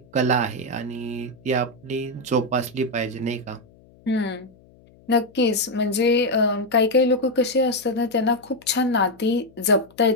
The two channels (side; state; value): left; noise; hum, 27 dB below the sound